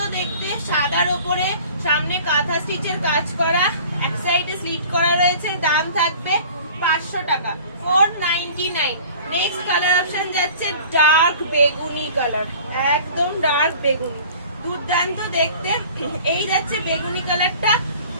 দেখতে, সাদার ওপরে সামনে কাঁথা স্টিচের কাজ করা, এক সাইডে স্লিট করা রয়েছে। দাম থাকবে 500 টাকা, 499। নেক্সট কালার অপশন যাচ্ছে ডার্ক বেগুনি কালার, একদম ডার্ক বেগুনি, দুর্দান্ত দেখতে। এই যাচ্ছে বেগুনি কালারটা,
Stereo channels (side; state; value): both; inverted; correlation -0.46